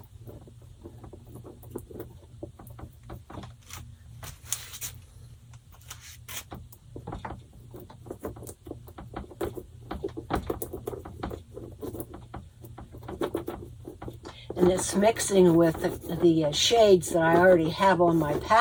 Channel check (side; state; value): both; identical; correlation 1.00